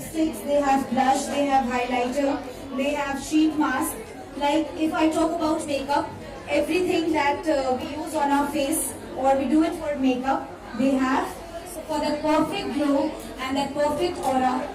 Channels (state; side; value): identical; both; correlation 1.00